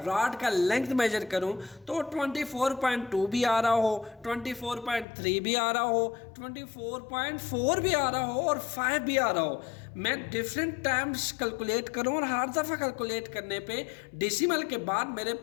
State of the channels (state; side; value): drops out; right; at 5.1 s